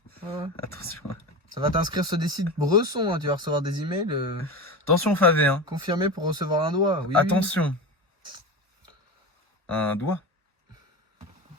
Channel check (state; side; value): normal; both; correlation 0.25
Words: Ouais. Attention. Ça va t'inscrire sur des sites Bresson. Hein. Tu vas recevoir des emails Attention, Favé. Hein. confirmés pour recevoir un doigt. Oui, Attention. Un doigt.